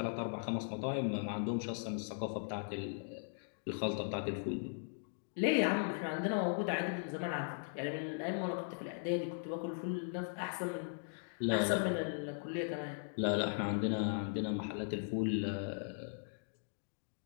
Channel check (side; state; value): right; silent; digital silence